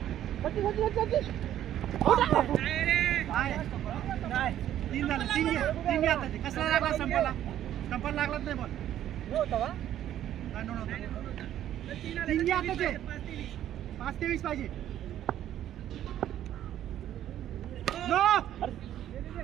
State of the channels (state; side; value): quieter; left; 11.6 dB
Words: तीन झालं तीन घे आता कसला लागला संपाला लागलाच नाही बॉल तीन घे आता ते 5-23 पाहिजे